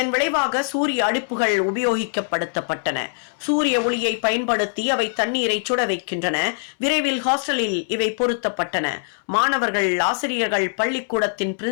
விளைவாக சூரிய அடுப்புகள் உபயோகிக்கப்படுத்தப்பட்டன. சூரிய ஒளியை பயன்படுத்தி அவை தண்ணீரை சுட வைக்கின்றன. விரைவில் ஹாஸ்டலில் இவை பொருத்தப்பட்டன. மாணவர்கள், ஆசிரியர்கள், பள்ளிக்கூடத்தின்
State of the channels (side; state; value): right; silent; 64 dB below the other